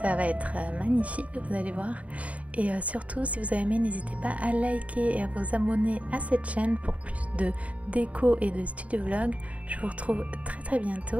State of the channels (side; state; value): left; late; 0.067 ms